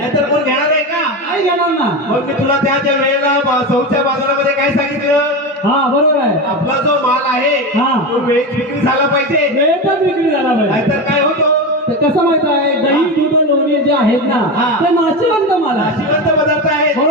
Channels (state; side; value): normal; both; correlation 0.19